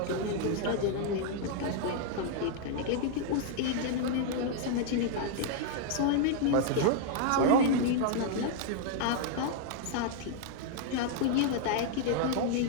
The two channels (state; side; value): different; both; correlation 0.00